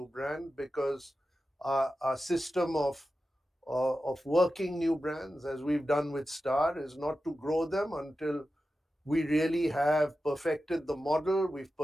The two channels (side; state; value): both; normal; correlation 0.92